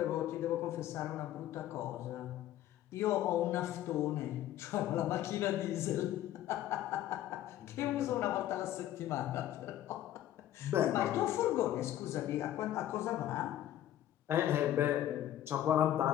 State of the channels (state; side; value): quieter; right; 12.6 dB